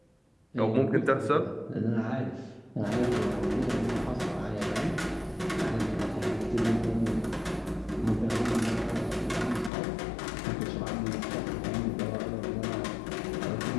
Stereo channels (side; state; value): right; drops out; at 9.7 s